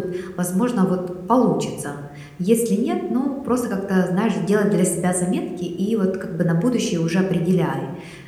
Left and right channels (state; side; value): identical; both; correlation 1.00